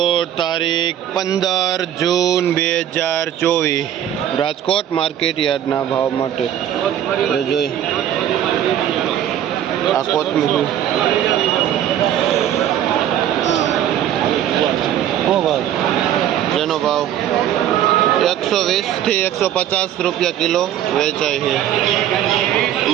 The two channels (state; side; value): quieter; left; 10.9 dB